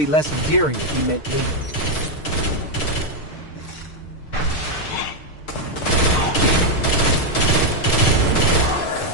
less endearing if he meant me.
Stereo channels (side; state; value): right; late; 6.6 ms